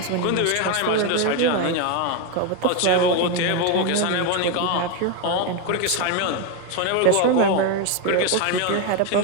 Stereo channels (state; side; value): different; both; correlation 0.02